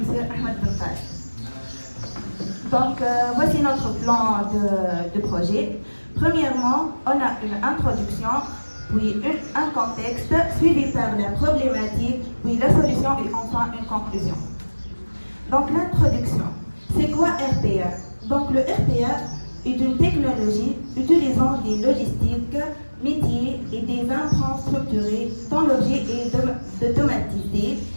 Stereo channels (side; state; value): both; inverted; correlation -1.00